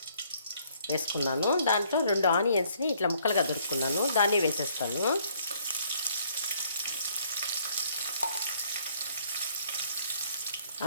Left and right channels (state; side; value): inverted; both; correlation -0.64